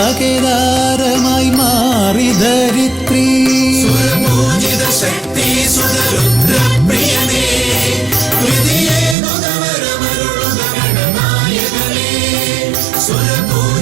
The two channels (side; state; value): left; drops out; at 9.2 s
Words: മാറി ധരിത്രി. സുരപൂജിത ശക്തി സുതരുദ്രപ്രിയനേ, ഹൃദിയേ മുതവരമരുളുക ഗണനായകനേ.